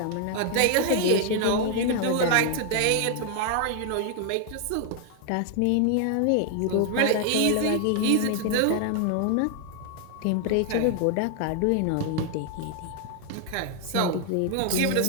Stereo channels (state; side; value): different; both; correlation 0.00